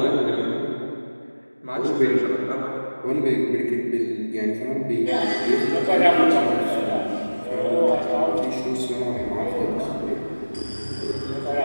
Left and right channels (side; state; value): both; inverted; correlation -1.00